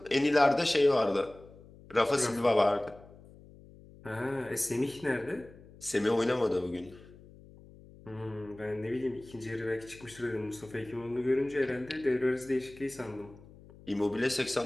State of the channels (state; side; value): noise; left; hum, 21 dB below the sound